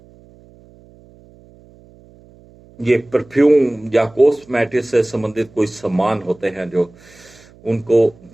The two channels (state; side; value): noise; right; hum, 26 dB below the sound